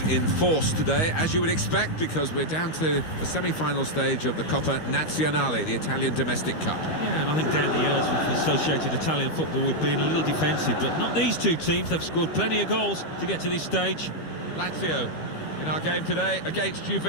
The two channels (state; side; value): late; right; 13 ms